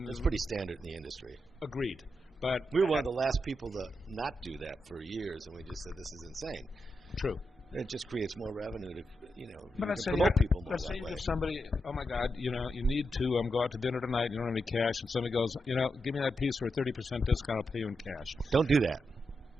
It's pretty standard in the industry. Agreed. But We were one of the last people to not do that for years, and we just said this is insane. True. It just creates more revenue to, But let's say promote people more let's say that you way. give somebody, oh my God, you need to go out to dinner tonight. You don't have any cash, and somebody goes, give me that piece for a 30% discount. I'll pay you in cash. Don't do that.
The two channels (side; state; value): both; normal; correlation 0.86